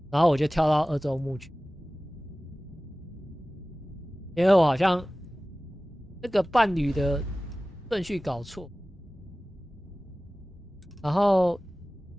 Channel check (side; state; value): both; normal; correlation 0.97